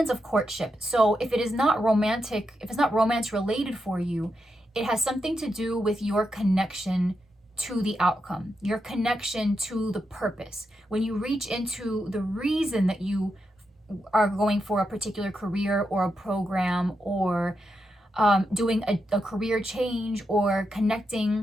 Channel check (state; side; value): normal; both; correlation 0.85